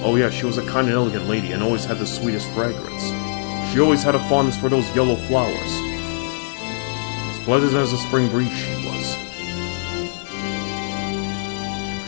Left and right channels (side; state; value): right; silent; digital silence